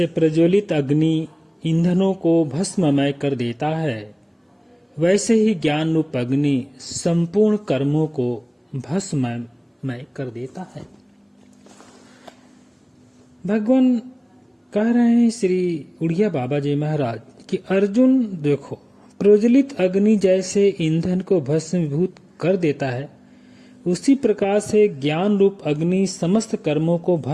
प्रज्वलित अग्नि ईंधनों को भस्ममय कर देता है, वैसे ही ज्ञान रूप अग्नि संपूर्ण कर्मों को भस्ममय कर देता है। भगवान कह रहे हैं श्री उड़िया बाबा जी महाराज कि अर्जुन देखो, प्रज्वलित अग्नि जैसे ईंधन को भस्मीभूत कर देता है, उसी प्रकार से ज्ञान रूप अग्नि समस्त कर्मों को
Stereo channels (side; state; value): both; identical; correlation 1.00